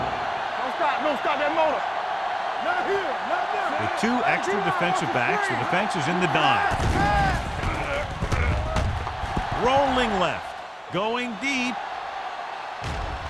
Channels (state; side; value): identical; both; correlation 1.00